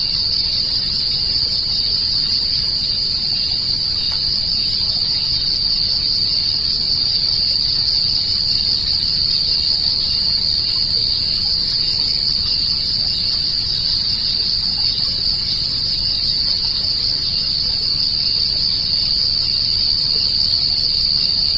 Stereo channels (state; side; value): noise; left; rumble, 9 dB below the sound